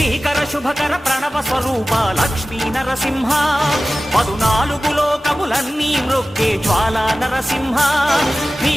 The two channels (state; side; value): normal; both; correlation 0.96